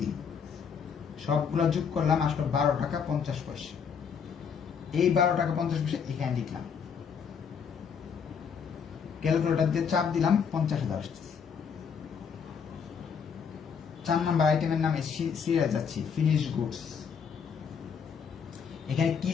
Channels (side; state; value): right; quieter; 6.7 dB